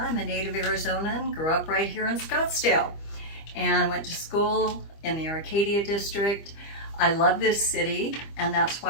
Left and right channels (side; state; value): right; late; 25 ms